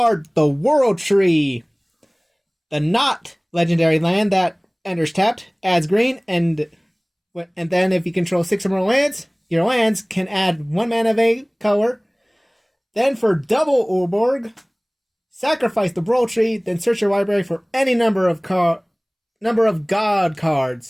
the World Tree. The not legendary land that enters tapped, adds green, and then if you control 6 or more lands, your lands can add 1 mana of a color. Then for double Urborg, sacrifice the World Tree, then search your library for any number of God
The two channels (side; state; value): both; identical; correlation 1.00